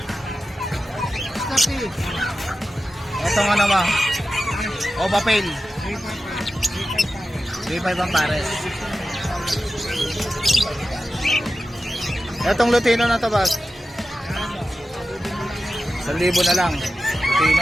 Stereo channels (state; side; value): normal; both; correlation 0.93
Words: Ito nga naman, opa pail. 3,500 ang pares. Itong Lutino na to, boss? 1,000 na lang.